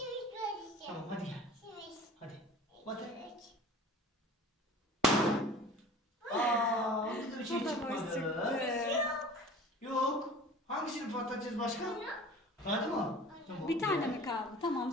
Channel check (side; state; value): both; normal; correlation 0.43